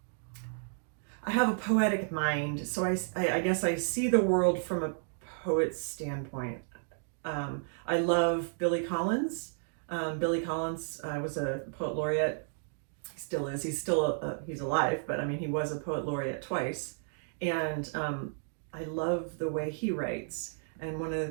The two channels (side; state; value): left; silent; digital silence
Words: have a poetic mind, so I guess I see the world from a poet's standpoint. I love Billy Collins. Billy Collins was a poet laureate. He still is. He's still he's alive, but I mean, he was a poet laureate twice, and I love the way he writes. And one of the